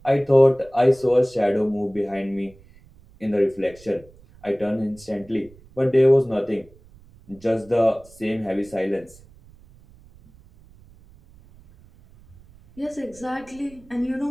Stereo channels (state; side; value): noise; right; rumble, 25 dB below the sound